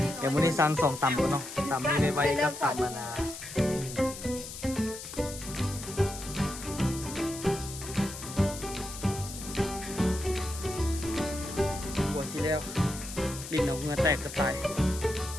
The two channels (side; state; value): left; noise; hiss, 10 dB below the sound